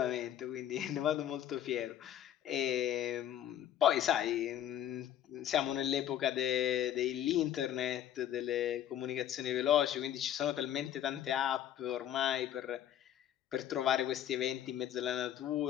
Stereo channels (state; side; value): quieter; right; 11.0 dB